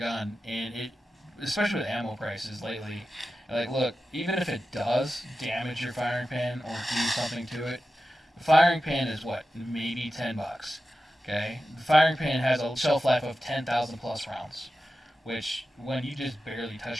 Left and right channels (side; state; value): both; normal; correlation 0.93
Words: And especially with ammo prices lately, like, look, even if it does damage your firing pin or do something to it, the firing pin is what? Maybe $10. Okay? The firing pin has a shelf life of 10,000 plus rounds, which when you just barely